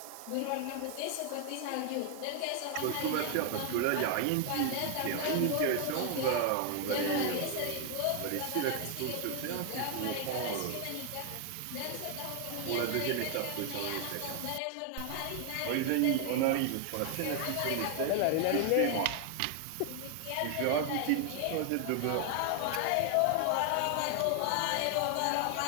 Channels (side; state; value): both; different; correlation 0.00